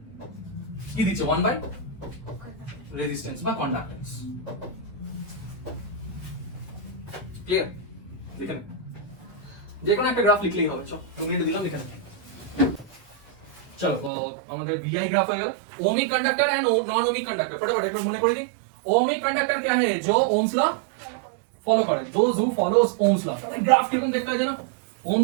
কি দিচ্ছে 1 বাই রেজিস্ট্যান্স বা কন্ডাক্ট্যান্স ক্লিয়ার লিখে নে যে কোনো একটা গ্রাফ লিখলেই হবে চল আমি দিলাম লিখে নে চলো তো আমাদের ভিআই গ্রাফ হয়ে গেল ohmic conductor and non ohmic conductor फटाफट एक बार মনে করে দিই ओमिक कंडक्टर क्या है जो ओम्स लॉ फॉलो करे those who follows Ohm's law तो ग्राफ किरকম देखता है জানো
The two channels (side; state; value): left; drops out; at 14.1 s